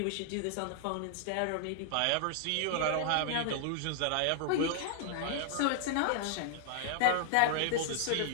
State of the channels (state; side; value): different; both; correlation -0.01